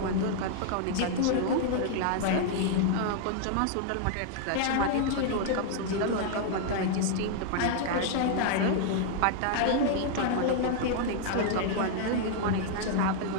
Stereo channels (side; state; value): both; different; correlation 0.00